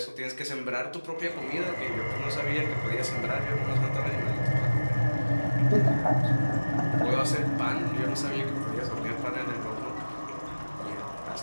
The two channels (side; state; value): both; inverted; correlation -1.00